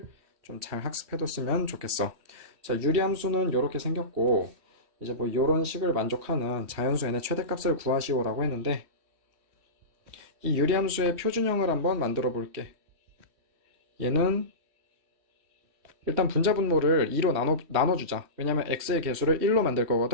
좀 잘 학습해뒀으면 좋겠어. 자, 유리함수는 이렇게 생겼고, 이제 뭐 이런 식을 만족하는 자연수 n의 최대값을 구하시오라고 했는데, 이 유리함수의 표준형을 한번 만들어 볼게. 얘는 일단 분자분모를 2로 나눠주자. 왜냐면 x의 개수를 1로 만들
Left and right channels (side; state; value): left; late; 3.1 ms